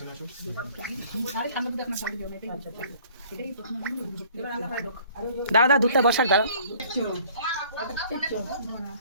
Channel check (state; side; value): inverted; both; correlation -0.54